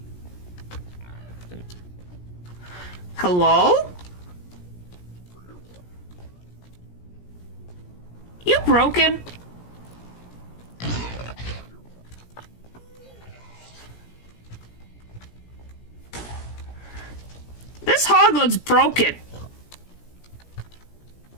Hello? You broken? This hoglin's broken.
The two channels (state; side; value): late; right; 17 ms